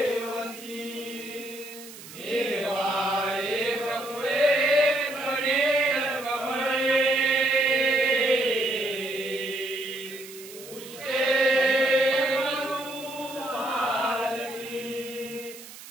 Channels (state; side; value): noise; right; hiss, 16 dB below the sound